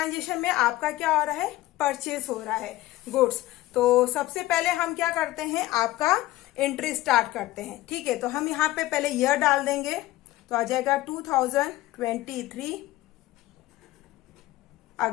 में आपका क्या हो रहा है? परचेस हो रहा है गुड्स। तो सबसे पहले हम क्या करते हैं? आपका एंट्री स्टार्ट करते हैं। ठीक है, तो हम यहाँ पे पहले ईयर डाल देंगे, तो आ जाएगा 2023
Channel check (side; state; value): right; quieter; 16.9 dB